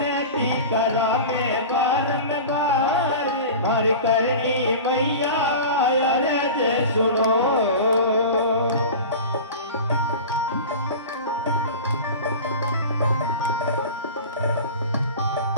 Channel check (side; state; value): both; inverted; correlation -0.33